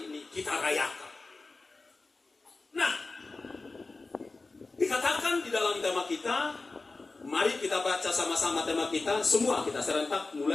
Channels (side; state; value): right; quieter; 3.6 dB